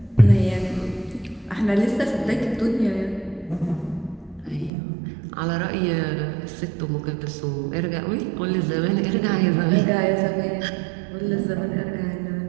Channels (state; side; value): drops out; left; at 4.7 s